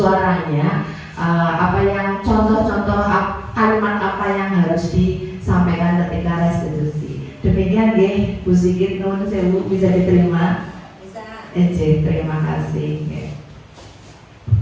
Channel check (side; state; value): both; identical; correlation 1.00